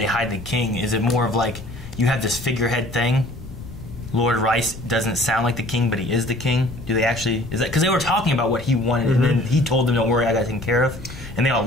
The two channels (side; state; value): left; noise; rumble, 14 dB below the sound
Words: hide the king? Is it more of like, you have this figurehead thing, Lord Rice doesn't sound like the king, but he is the king? Do they actually, is that, because they were talking about what he wanted, and then he told them, don't worry, I got it taken care of, and they all